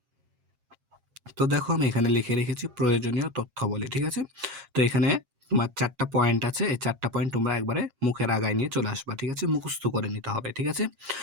তো দেখো আমি এখানে লিখে রেখেছি প্রয়োজনীয় তথ্যাবলী, ঠিক আছে? তো এখানে তোমার ৪ টা পয়েন্ট আছে। এই ৪ টা পয়েন্ট তোমরা একবারে মুখের আগায় নিয়ে চলে আসবা, ঠিক আছে? মুখস্থ করে নিতে হবে, ঠিক আছে?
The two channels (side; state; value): left; late; 7.4 ms